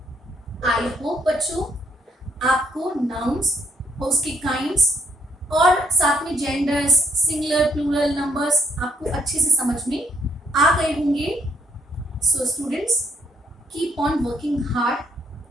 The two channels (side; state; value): both; normal; correlation 0.71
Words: आई होप बच्चों आपको नाउन्स, उसकी काइंड्स और साथ में जेंडर्स, सिंगुलर, प्लूरल, नंबर्स आपको अच्छे से समझ में आ गए होंगे। So students, keep on working hard